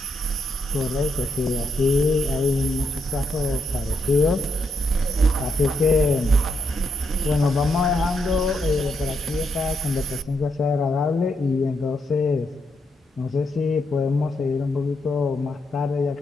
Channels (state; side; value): normal; both; correlation 0.79